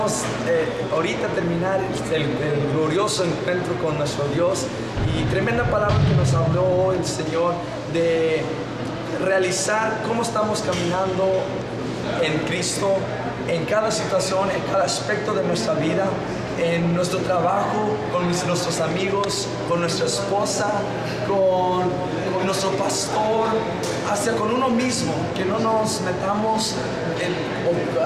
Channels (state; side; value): identical; both; correlation 1.00